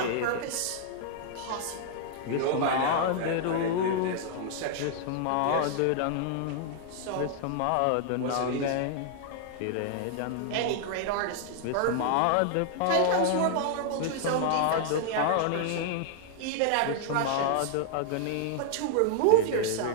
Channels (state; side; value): different; both; correlation 0.00